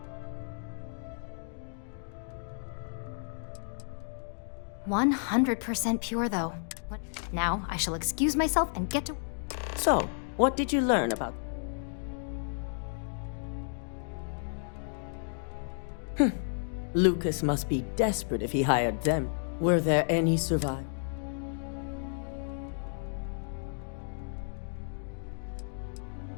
100% pure, though. Now, I shall excuse myself and get to... So, what did you learn about... Lucas must be desperate if he hired them. Were there any survivors?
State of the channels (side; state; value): right; silent; digital silence